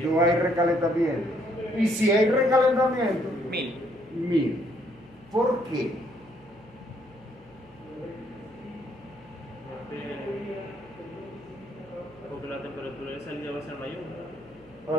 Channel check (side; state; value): left; noise; hum, 26 dB below the sound